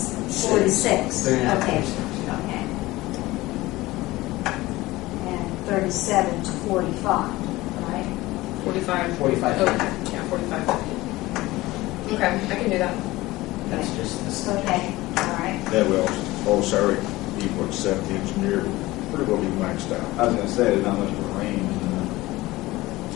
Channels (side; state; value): right; quieter; 18.9 dB